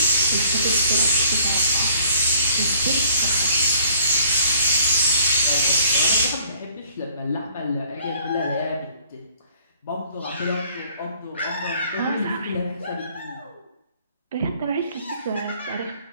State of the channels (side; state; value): both; inverted; correlation -0.57